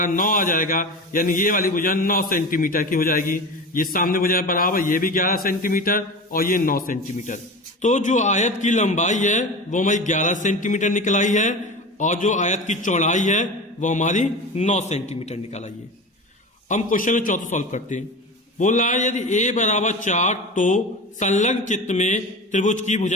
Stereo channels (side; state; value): both; normal; correlation 0.29